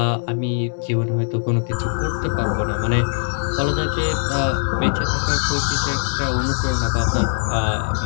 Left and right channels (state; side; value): silent; right; digital silence